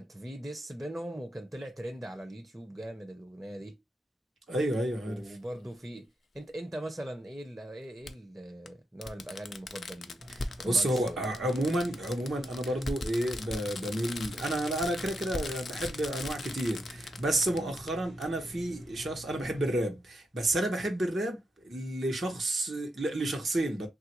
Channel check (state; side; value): normal; both; correlation 0.83